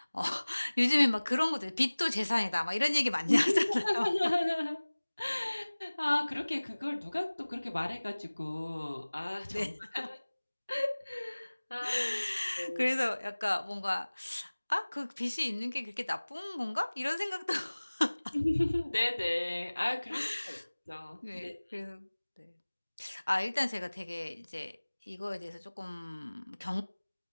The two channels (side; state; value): both; inverted; correlation -1.00